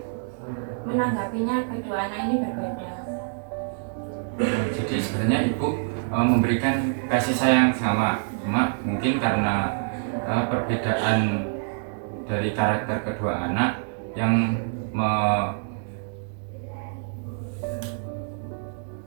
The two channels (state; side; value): silent; left; digital silence